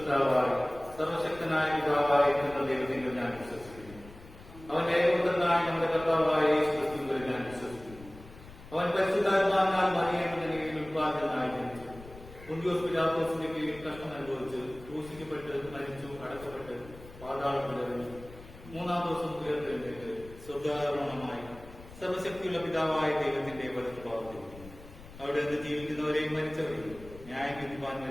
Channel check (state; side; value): noise; left; rumble, 18 dB below the sound